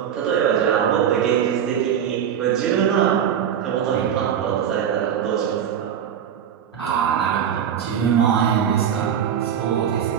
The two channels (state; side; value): quieter; left; 8.8 dB